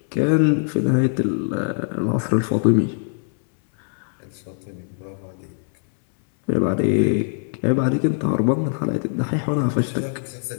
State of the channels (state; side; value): silent; right; 64 dB below the other